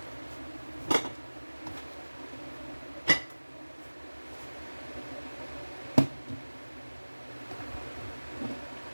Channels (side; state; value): both; inverted; correlation -1.00